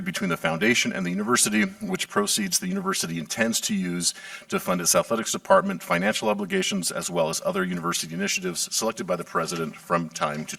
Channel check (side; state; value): both; identical; correlation 1.00